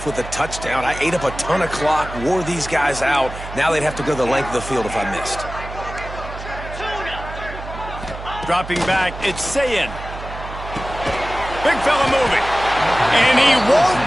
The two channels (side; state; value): right; noise; hum, 11 dB below the sound